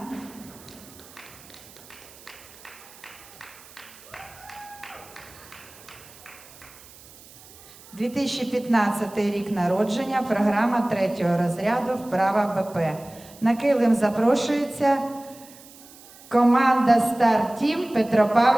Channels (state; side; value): noise; right; hiss, 21 dB below the sound